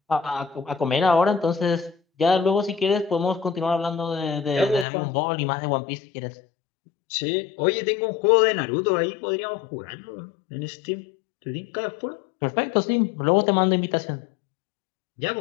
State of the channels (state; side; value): drops out; right; at 4.9 s